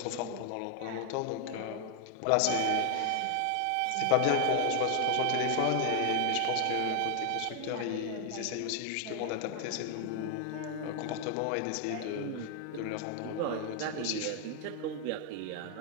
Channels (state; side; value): different; both; correlation 0.00